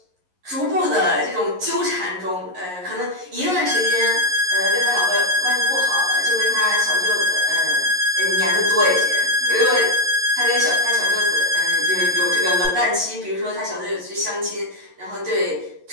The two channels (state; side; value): late; left; 11 ms